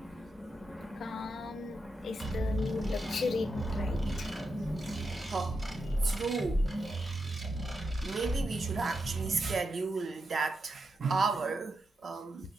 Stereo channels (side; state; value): both; normal; correlation 0.86